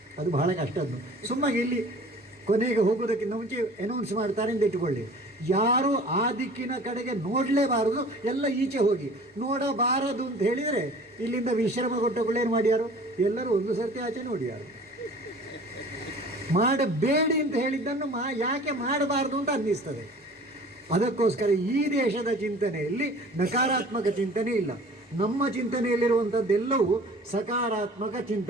ಅದು ಬಹಳ ಕಷ್ಟದ್ದು. ಸುಮ್ಮಾಗಿ ಇಲ್ಲಿ ಕೊನೆಗೆ ಹೋಗೋದಕ್ಕಿಂತ ಮುಂಚೆ ಅನೌನ್ಸ್ ಮಾಡ್ತಾರೆ ಅಂತ ಇಟ್ಟುಕೊಳ್ಳಿ, ಯಾರು ಆ ದಿಕ್ಕಿನ ಕಡೆಗೆ ನೋಡಲೇಬಾರದು, ಎಲ್ಲ ಈಚೆ ಹೋಗಿ. ನೋಡಬಾರದು ಅಂತ ಹೇಳಿದರೆ ಇಲ್ಲಿಂದ ವಿಶ್ರಮ ಕೊಟ್ಟಗಳೇನು ಮಾಡ್ಯಾರು? ಎಲ್ಲರೂ ಒಂದು ಸರ್ತಿ ಆಚೆ ನೋಡ್ಯಾರು. ಮಾಡಬೇಡಿ ಅಂತ ಹೇಳಿದ್ದನ್ನು ಯಾಕೆ ಮಾಡಬಾರ್ದು ಅಂತ ಅನ್ನಿಸ್ತದೆ. ಅದಕ್ಕೋಸ್ಕರ ಈ ದೇಶದ ಚಿಂತನೆಯಲ್ಲಿ ನಕಾರಾತ್ಮಕ ಚಿಂತನೆ ಇಲ್ಲ. ನಮ್ಮ ಚಿಂತನೆಯಲ್ಲಿರುವಂಥದ್ದೆಲ್ಲವೂ ಸಕಾರಾತ್ಮಕ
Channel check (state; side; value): normal; both; correlation 0.46